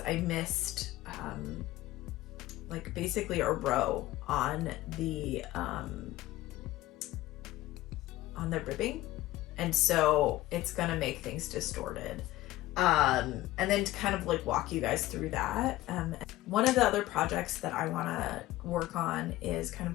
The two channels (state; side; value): quieter; right; 16.4 dB